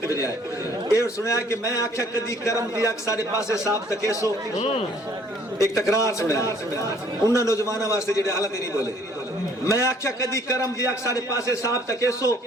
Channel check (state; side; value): normal; both; correlation 0.59